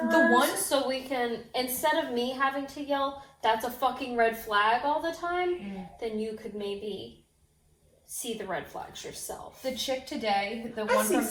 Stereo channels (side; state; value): both; identical; correlation 1.00